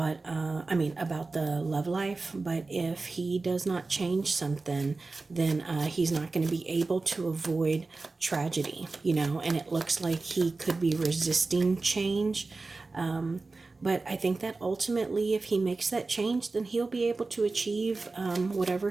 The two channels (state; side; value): quieter; left; 3.7 dB